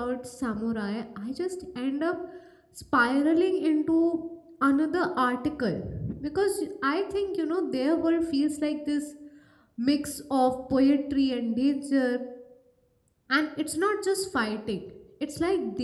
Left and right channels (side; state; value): both; identical; correlation 1.00